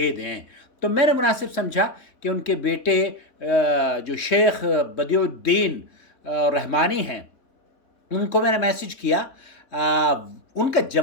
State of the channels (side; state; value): right; late; 3.6 ms